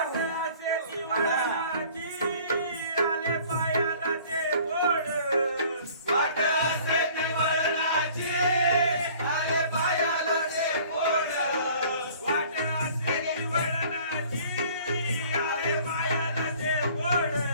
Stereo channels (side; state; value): both; inverted; correlation -0.51